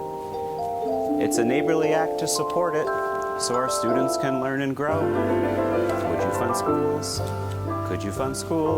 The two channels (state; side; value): identical; both; correlation 1.00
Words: It's a neighborly act to support it, so our students can learn and grow. Would you fund schools? Could you fund